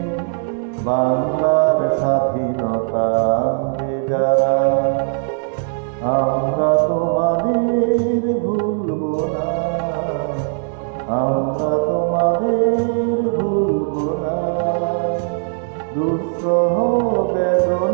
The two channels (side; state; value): left; silent; 65 dB below the other